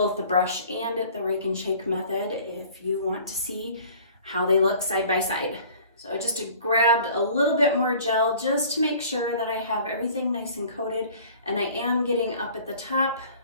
the brush and the rake and shake method if you want to see how they look side by side. So I just grabbed a little bit more gel just to make sure that I have everything nice and coated, and I am getting up at the top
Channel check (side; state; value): both; inverted; correlation -0.49